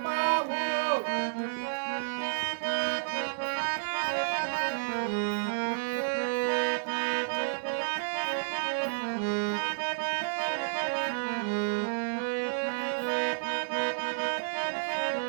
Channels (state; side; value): silent; left; 57 dB below the other